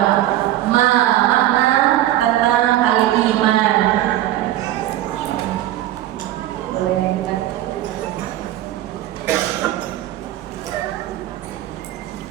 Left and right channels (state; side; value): quieter; left; 13.8 dB